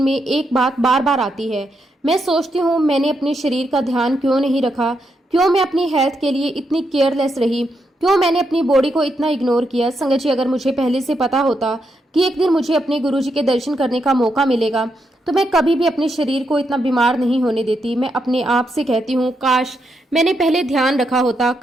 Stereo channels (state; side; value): normal; both; correlation 0.81